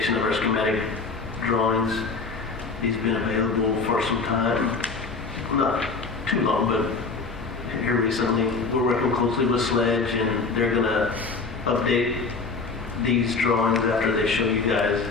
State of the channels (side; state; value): right; quieter; 4.3 dB